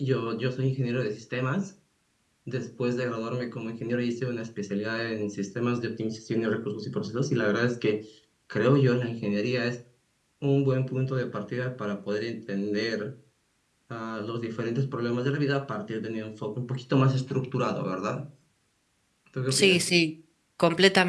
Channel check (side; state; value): both; identical; correlation 1.00